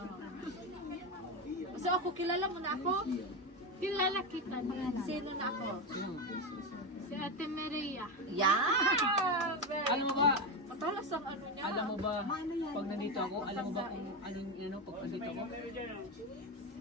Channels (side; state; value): both; normal; correlation 0.14